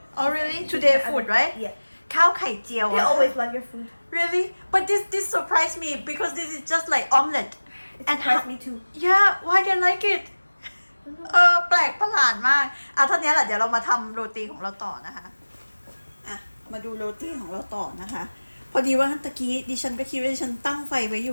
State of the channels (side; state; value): both; inverted; correlation -1.00